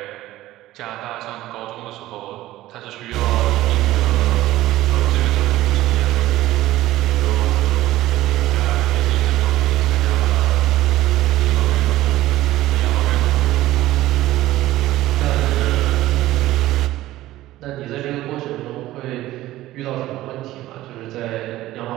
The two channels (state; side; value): quieter; left; 15.8 dB